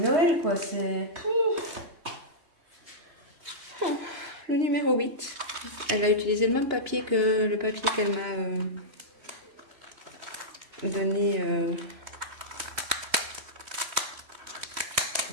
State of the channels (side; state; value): left; late; 3.1 ms